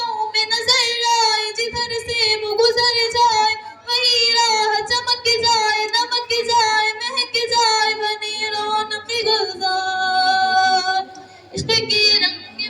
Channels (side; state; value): both; identical; correlation 1.00